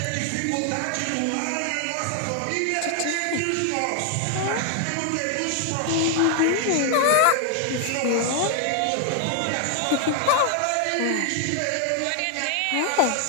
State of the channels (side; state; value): both; different; correlation 0.00